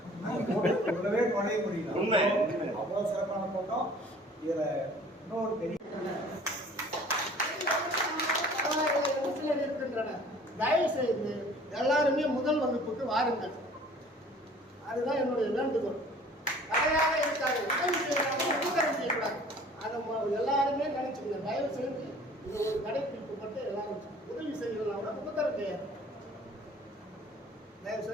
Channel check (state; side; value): normal; both; correlation 0.50